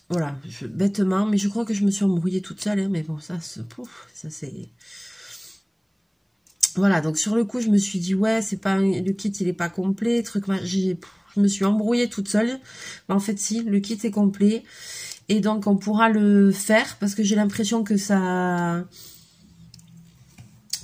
voilà, bêtement, mais je crois que je me suis embrouillée toute seule, hein, mais bon, ça c'est... Voilà, donc sur le coup, je me suis dit, ouais, c'est pas le kit, il est pas complet, truc, je me suis embrouillée toute seule. Mais en fait, si, le kit est complet, et donc on pourra le faire, parce que j'ai l'impression que ça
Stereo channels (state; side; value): identical; both; correlation 1.00